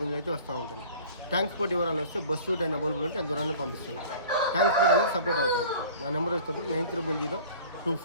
అయితే వస్తూ ఉంటాయి. ట్రాన్స్పోర్ట్ వివరాలు వస్తే బస్సు టైం అవైలబుల్ ఉంటే అంత దూరాన్ని పంపిస్తాను. ట్రాన్స్పోర్ట్ అనేది సపరేట్ అవుతుంది. నా నెంబర్ వచ్చేటప్పుడు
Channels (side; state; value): both; inverted; correlation -0.45